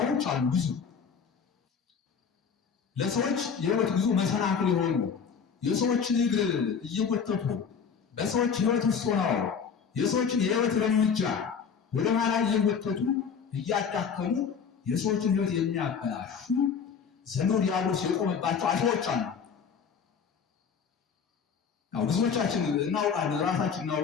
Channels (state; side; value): quieter; right; 6.4 dB